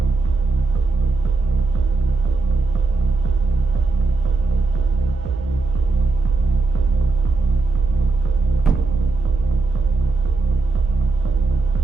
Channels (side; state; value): left; quieter; 3.7 dB